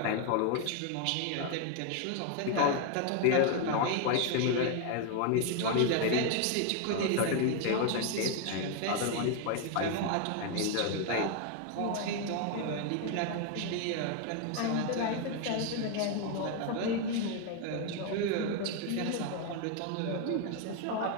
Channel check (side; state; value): both; different; correlation 0.01